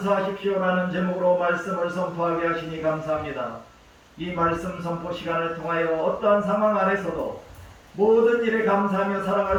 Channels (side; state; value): both; identical; correlation 1.00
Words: 제목으로 말씀을 선포하게 하시니 감사합니다. 이 말씀 선포 시간을 통하여 어떠한 상황 안에서도 모든 일에 감사하며